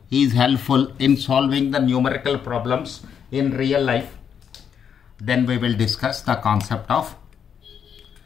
is helpful in solving the numerical problems in real life. Then we will discuss the concept of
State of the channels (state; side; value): quieter; right; 7.8 dB